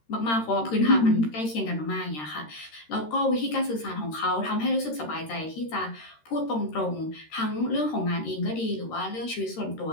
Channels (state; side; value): late; right; 13 ms